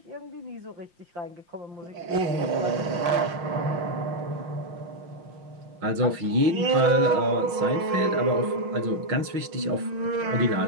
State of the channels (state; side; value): late; left; 5.6 ms